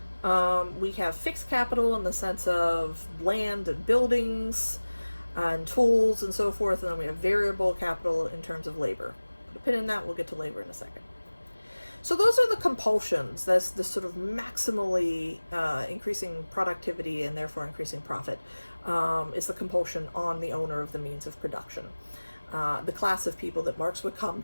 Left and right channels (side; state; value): both; inverted; correlation -1.00